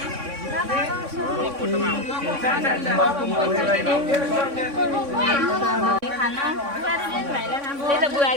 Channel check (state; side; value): late; left; 3.6 ms